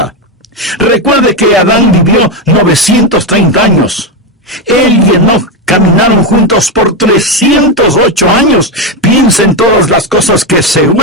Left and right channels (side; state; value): both; normal; correlation 0.09